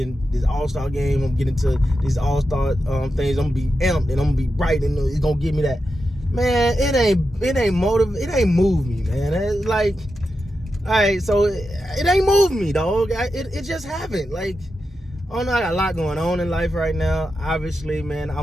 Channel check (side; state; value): both; normal; correlation 0.89